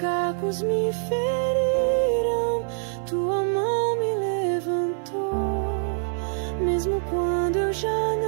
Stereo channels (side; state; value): left; silent; 62 dB below the other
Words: me feriram. Tua mão me levantou, mesmo quando eu já